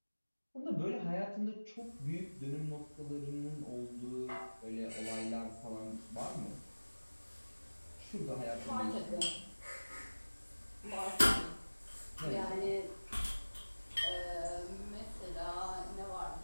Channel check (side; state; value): both; inverted; correlation -1.00